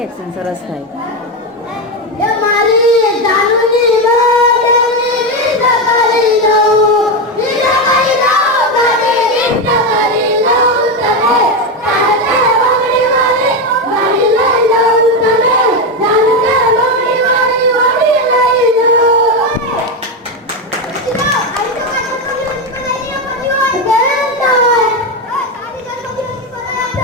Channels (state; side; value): normal; both; correlation 0.11